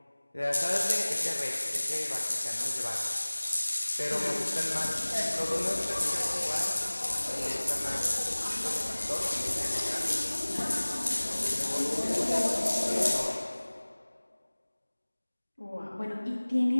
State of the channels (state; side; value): inverted; both; correlation -1.00